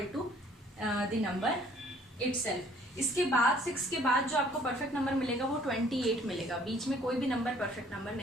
to the number itself. इसके बाद 6 के बाद जो आपको परफेक्ट नंबर मिलेगा वो 28 मिलेगा, बीच में कोई भी नंबर परफेक्ट नंबर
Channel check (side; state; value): both; normal; correlation 0.58